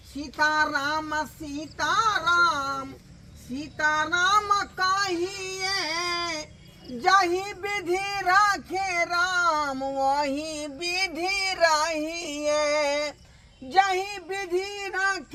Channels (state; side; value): identical; both; correlation 1.00